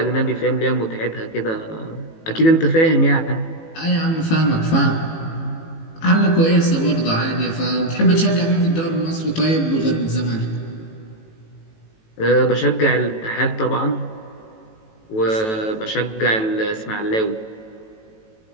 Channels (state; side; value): late; right; 18 ms